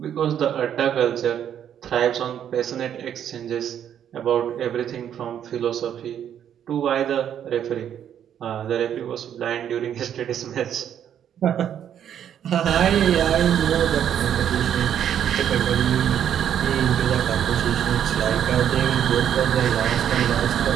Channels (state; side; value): quieter; left; 9.6 dB